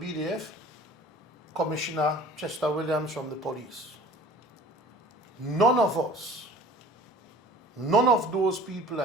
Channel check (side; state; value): both; normal; correlation 0.46